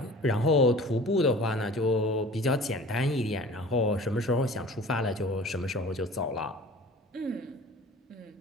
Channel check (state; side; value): normal; both; correlation 0.43